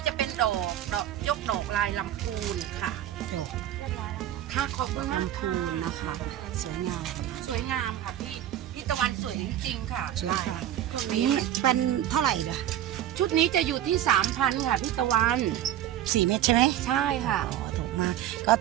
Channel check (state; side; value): quieter; left; 11.8 dB